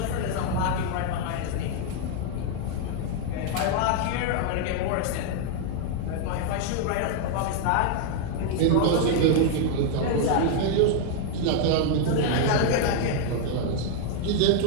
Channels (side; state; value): both; different; correlation 0.00